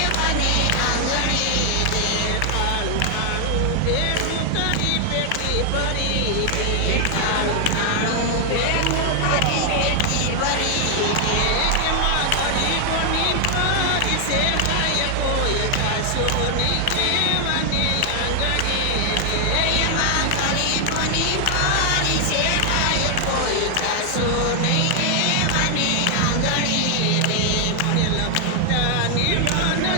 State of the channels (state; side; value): different; both; correlation 0.00